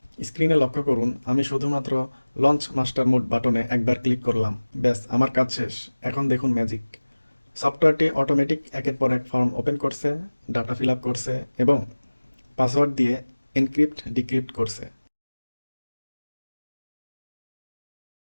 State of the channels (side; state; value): both; inverted; correlation -1.00